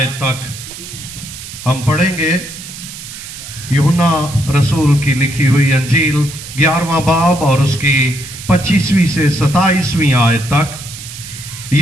तक हम पढ़ेंगे। यूहन्ना रसूल की लिखी हुई अंजील 11वां बाब और उसकी 25वीं से 27वीं आयत तक।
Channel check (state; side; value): noise; right; hiss, 12 dB below the sound